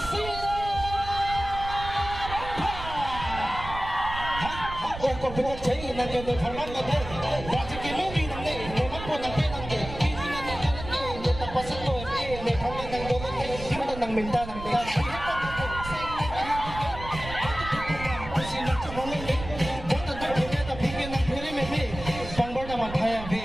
Oh, computer chain, nandiyan yung format na din. Dati kinumi ng day, naman po ng pinang day. Hindi na nila day, may tapasok ko, may pangin ng dolot day. Hindi ng minta ng day. Pangbar naman tayo,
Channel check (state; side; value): noise; right; rumble, 10 dB below the sound